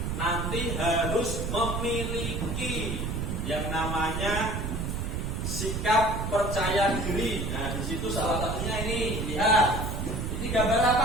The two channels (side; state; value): right; noise; rumble, 2 dB below the sound